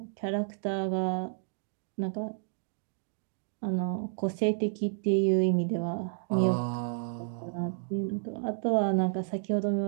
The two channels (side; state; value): left; silent; digital silence